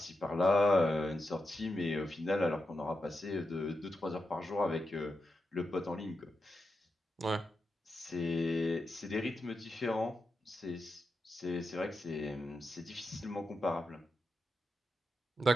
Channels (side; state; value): both; normal; correlation 0.88